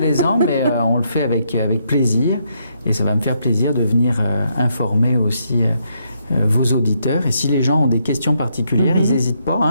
mais on le fait avec plaisir. Et ça va me faire plaisir de venir informer aussi vos auditeurs. Et si les gens ont des questions particulières, ils n'hésitent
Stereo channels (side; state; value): both; inverted; correlation -0.76